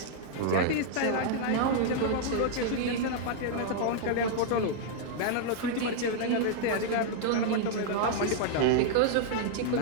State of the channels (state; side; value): different; both; correlation -0.01